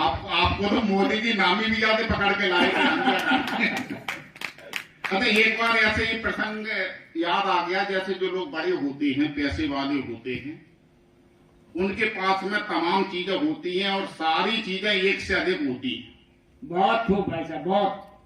तो मोदी जी नामी भी जाते पकड़ के लाए थे। अच्छा, एक बार ऐसे ही प्रसंग याद आ गया, जैसे जो लोग बड़े होते हैं, पैसे वाले होते हैं, उनके पास में तमाम चीजें होती हैं और सारी चीजें एक से अधिक होती हैं। बहुत खूब भाई साहब, बहुत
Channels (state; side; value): identical; both; correlation 1.00